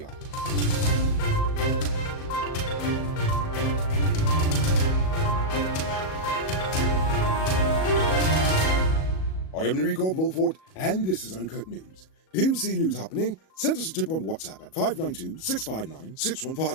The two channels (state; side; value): late; right; 37 ms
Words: eyes. I am Enrico Bulford, and this is Uncut News. Do you see news happening? Send us a tip on WhatsApp at